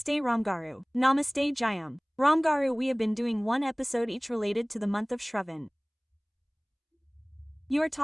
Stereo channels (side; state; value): both; identical; correlation 1.00